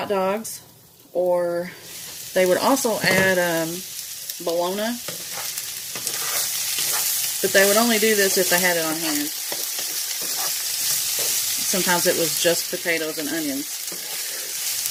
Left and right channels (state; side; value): identical; both; correlation 1.00